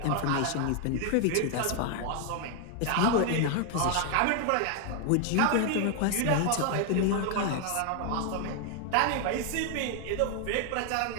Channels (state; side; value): different; both; correlation 0.00